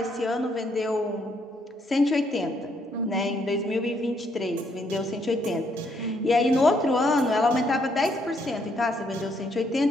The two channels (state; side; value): normal; both; correlation 0.72